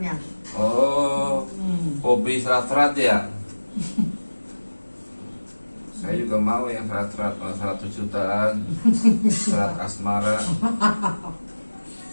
Oh, hobi serat-serat ya? Saya juga mau yang serat-serat, 100 jutaan, serat asmara,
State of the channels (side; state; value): both; inverted; correlation -1.00